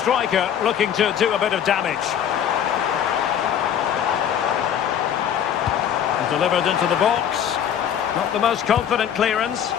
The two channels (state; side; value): quieter; right; 9.3 dB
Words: looking to do a bit of damage. And delivered into the box. Not the most confident clearance.